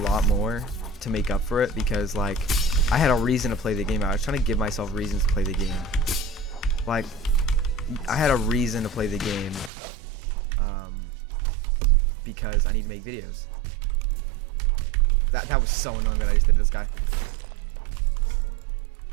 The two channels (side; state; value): left; drops out; at 9.7 s